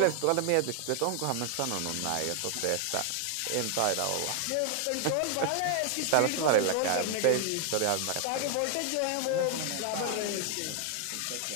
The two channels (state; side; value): different; both; correlation 0.00